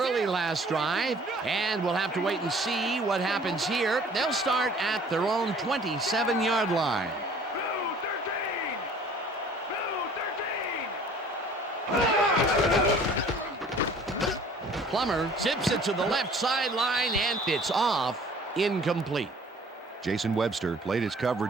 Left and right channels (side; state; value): both; normal; correlation 0.51